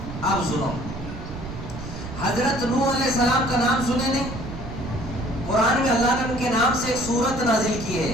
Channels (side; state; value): right; noise; rumble, 11 dB below the sound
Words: اب سنو, حضرت نوح علیہ السلام کا نام سنے نہیں؟ قرآن میں اللہ نے ان کے نام سے ایک سورت نازل کی